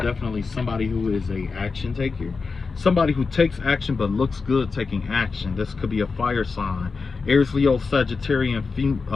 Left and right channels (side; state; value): right; quieter; 4.6 dB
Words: somebody who is a action taker. Somebody who takes action but looks good taking action. This could be a fire sign. Aries, Leo, Sagittarian,